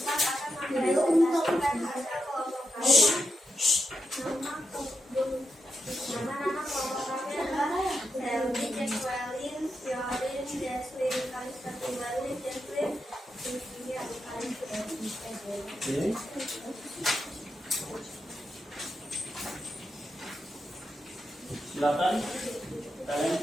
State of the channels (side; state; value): both; normal; correlation 0.86